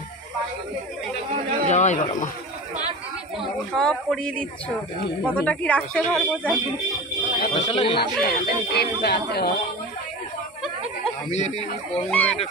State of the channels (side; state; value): both; normal; correlation 0.31